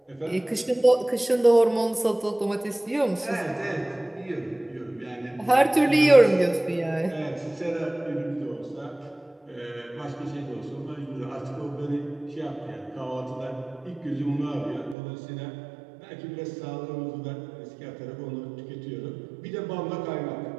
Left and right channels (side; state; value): left; drops out; at 15.0 s